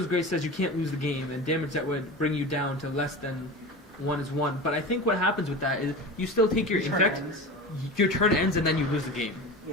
Grace says you can't lose the game, and damage that would bring you down to less than 1 is 1. But I think what happens with that is you still take your infect, your turn ends, and then you lose the game.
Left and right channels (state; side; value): normal; both; correlation 0.30